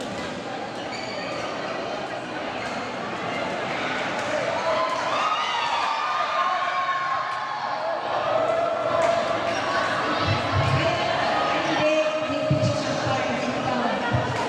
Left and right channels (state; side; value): identical; both; correlation 1.00